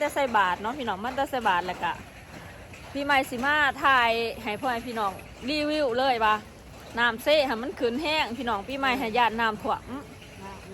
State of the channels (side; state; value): both; identical; correlation 1.00